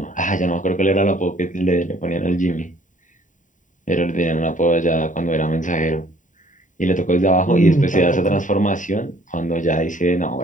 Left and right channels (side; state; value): right; late; 0.37 ms